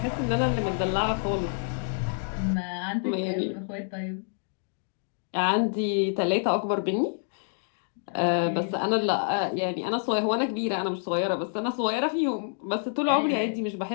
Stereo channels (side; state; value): right; silent; digital silence